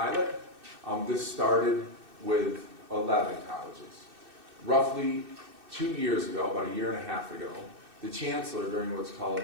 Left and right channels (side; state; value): left; late; 2.6 ms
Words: This started with 11 colleges. Roughly 2 years ago, about a year and a half ago, the chancellor, during what's called